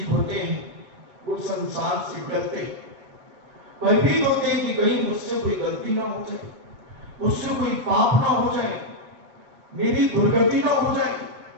होते हैं वो संसार से डरते हैं, भयभीत होते हैं कि कहीं मुझसे कोई गलती ना हो जाए, मुझसे कोई पाप ना हो जाए, मेरी दुर्गति ना हो जाए।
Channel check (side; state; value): left; late; 7.8 ms